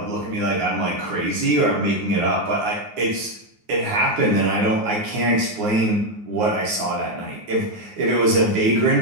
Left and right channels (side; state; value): left; late; 9.5 ms